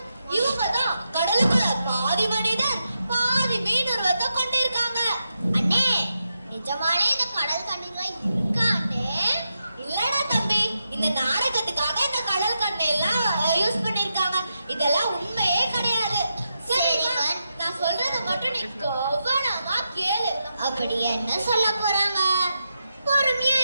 இவங்க தான் கடலுக்குள்ள பாதி மனிதன் பாதி மீன் உருவத்தை கொண்டிருக்காங்க. அண்ணே, நிஜமாலே இந்த கடல் கன்னிகள் இருக்காண்டே? இல்லடா தம்பி, இந்த நாடகத்துக்காக இந்த கடல் கண்ணை எல்லாம் அப்படி என்ன சொல்ல போறாங்க? பொறுமையா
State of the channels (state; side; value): inverted; both; correlation -0.86